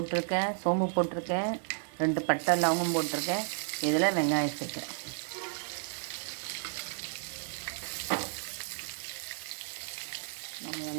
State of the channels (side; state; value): left; silent; digital silence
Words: சோம்பு போட்டிருக்கேன், 2 பட்டை லவங்கம் போட்டிருக்கேன். இதில் வெங்காயம் சேர்க்கேன். நம்ம